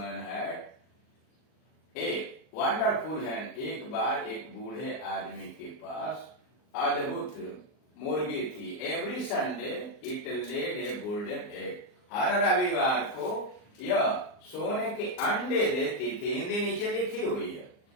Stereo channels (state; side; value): late; right; 39 ms